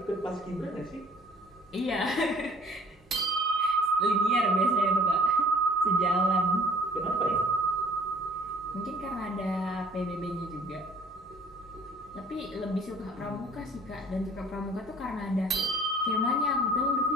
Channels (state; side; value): normal; both; correlation 0.54